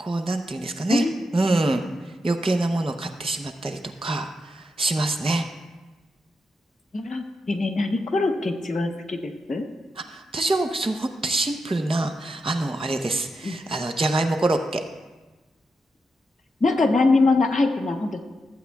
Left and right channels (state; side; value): normal; both; correlation 0.85